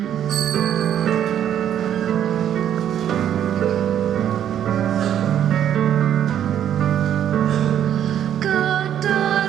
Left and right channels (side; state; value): left; quieter; 10.0 dB